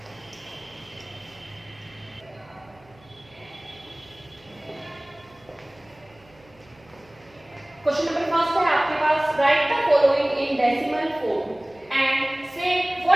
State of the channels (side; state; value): right; noise; hum, 28 dB below the sound